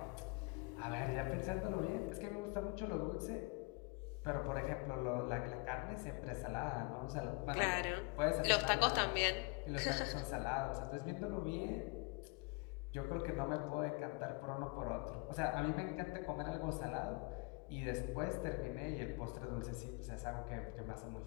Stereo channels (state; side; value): quieter; right; 28.4 dB